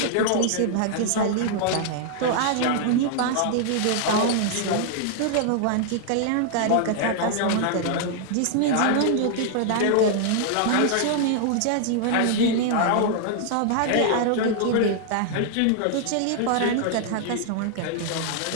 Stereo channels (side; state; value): both; different; correlation -0.01